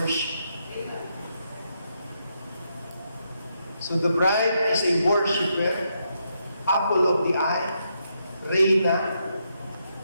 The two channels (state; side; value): inverted; both; correlation -0.80